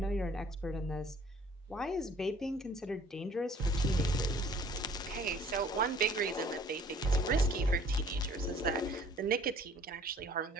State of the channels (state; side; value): normal; both; correlation 0.55